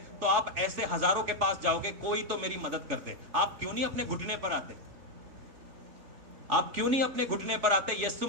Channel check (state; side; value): late; left; 3.4 ms